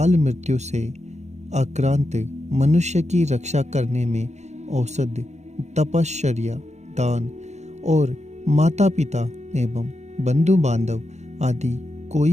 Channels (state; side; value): late; left; 0.33 ms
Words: मृत्यु से आक्रांत मनुष्य की रक्षा करने में औषधि, तपश्चर्या, दान और माता पिता एवं बंधु बांधव आदि